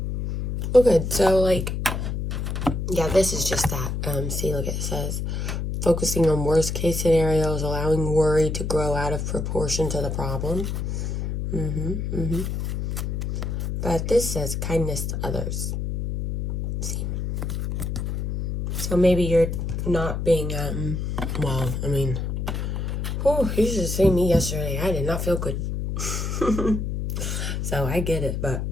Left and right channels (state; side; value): noise; left; hum, 2 dB below the sound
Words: Oh, good. So, yeah, this is just that. See, look, it says, focusing on worst case scenarios, allowing worry to grow out of proportion to the problem. But this says kindness to others. See? So maybe you're not being, you should have seen me yesterday. I did not feel good. So I get it, but